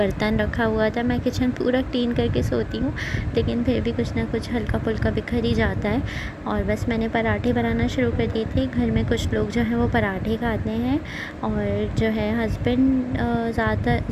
रखा हुआ था। मैं किचन पूरा क्लीन करके सोती हूँ, लेकिन फिर भी कुछ ना कुछ हल्का फुल्का बिखर ही जाता है। और बस मैंने पराठे बनाना शुरू कर दिए थे। घर में कुछ लोग जो हैं वो पराठे खाते हैं, और जो है हस्बैंड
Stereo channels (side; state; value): both; identical; correlation 1.00